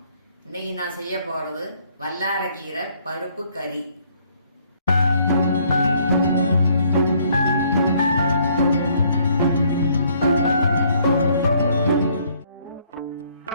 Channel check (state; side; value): inverted; both; correlation -0.65